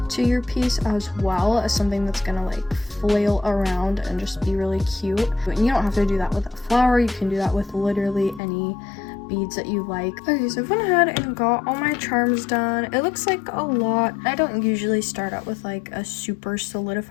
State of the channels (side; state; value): right; drops out; at 8.4 s